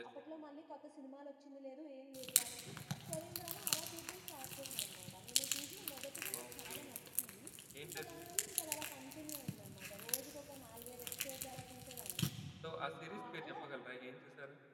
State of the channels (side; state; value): both; identical; correlation 1.00